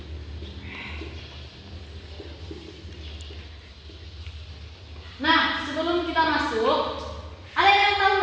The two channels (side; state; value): both; identical; correlation 1.00